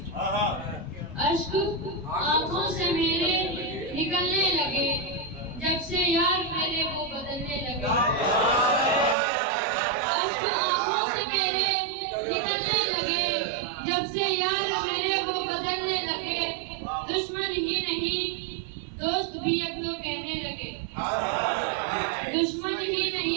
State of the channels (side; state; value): left; drops out; at 9.2 s